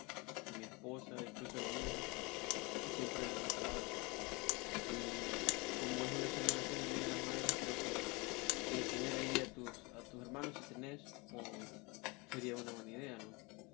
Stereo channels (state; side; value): quieter; right; 27.3 dB